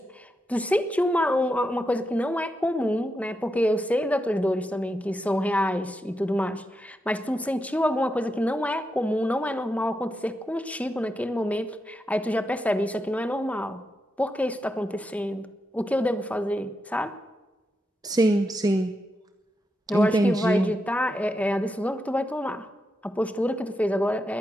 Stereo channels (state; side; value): normal; both; correlation 0.85